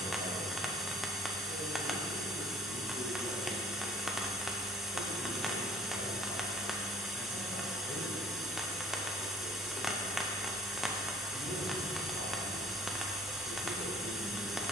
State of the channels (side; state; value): both; normal; correlation 0.55